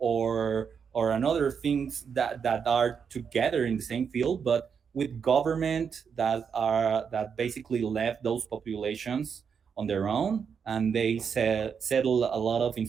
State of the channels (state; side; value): quieter; left; 6.7 dB